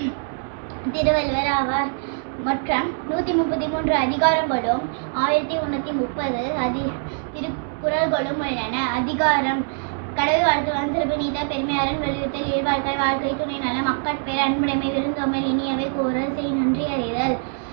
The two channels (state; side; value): silent; left; 63 dB below the other